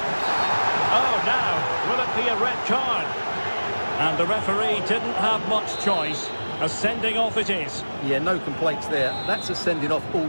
Oh, now, will it be a red card? And the referee didn't have much choice. A sending off it is. Yeah, no complaints there. That's a sending off all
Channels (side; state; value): both; inverted; correlation -1.00